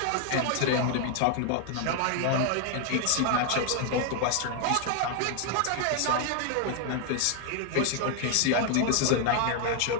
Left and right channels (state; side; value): different; both; correlation 0.00